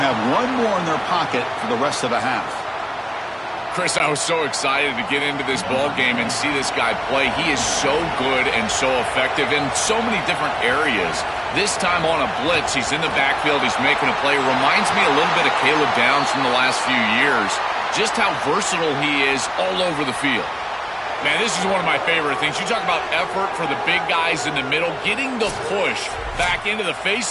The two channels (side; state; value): both; identical; correlation 1.00